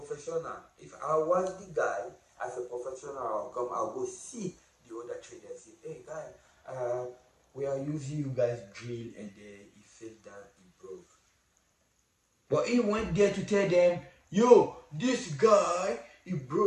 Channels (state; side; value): identical; both; correlation 1.00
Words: If I was the guy as a professional, I'll go see the other trader and say, hey guy, we are using you guys drill, and he fell down, he broke. But he went there to tell them, yo, this guy, he